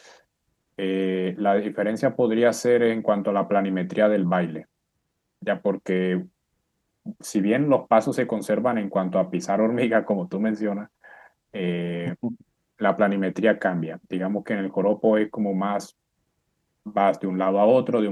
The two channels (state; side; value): identical; both; correlation 1.00